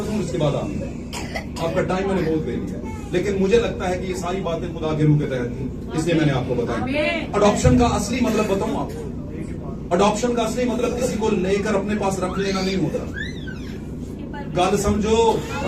दूं, इसके बाद आपका टाइम मैंने बहुत ले लिया, लेकिन मुझे लगता है कि ये सारी बातें खुदा के रूह के तहत थी, इसलिए मैंने आपको बताया। अडॉप्शन का असली मतलब बताऊं आपको, अडॉप्शन का असली मतलब किसी को लेकर अपने पास रख लेना नहीं होता। गल समझो,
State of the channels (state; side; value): identical; both; correlation 1.00